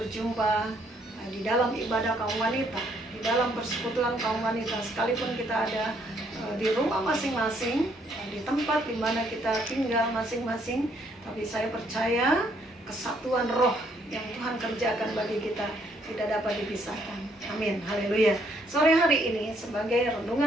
di dalam ibadah kaum wanita, di dalam persekutuan kaum wanita. Sekalipun kita ada di rumah masing-masing, di tempat di mana kita tinggal masing-masing, tapi saya percaya kesatuan roh yang Tuhan kerjakan bagi kita tidak dapat dipisahkan. Amin, haleluya. Sore hari ini sebagai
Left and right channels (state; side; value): normal; both; correlation 0.69